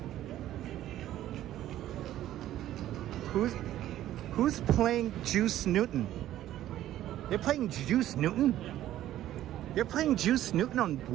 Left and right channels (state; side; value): quieter; left; 13.1 dB